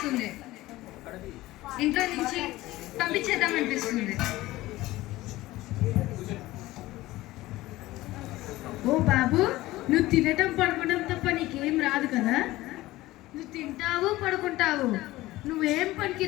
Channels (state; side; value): quieter; right; 17.6 dB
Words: ఇంట్లో నుంచి పంపించేద్దాం అనిపిస్తుంది. ఓ బాబు, నువ్వు తినటం పడుకోవడం తప్ప నీకేం రాదు కదా? నువ్వు తింటావు పడుకుంటావు, నువ్వేం